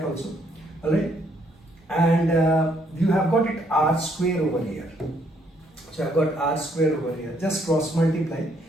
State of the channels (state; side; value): normal; both; correlation 0.70